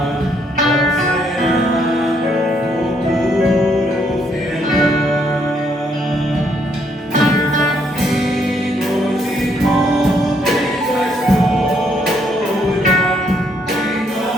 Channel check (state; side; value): normal; both; correlation 0.71